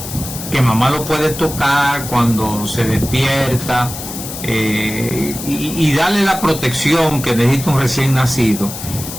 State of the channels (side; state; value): left; noise; hiss, 9 dB below the sound